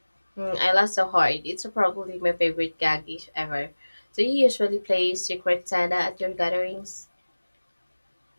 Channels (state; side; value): inverted; both; correlation -1.00